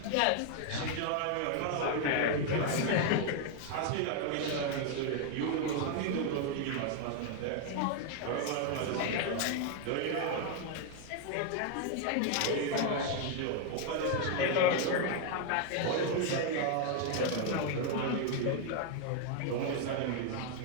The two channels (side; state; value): both; different; correlation 0.00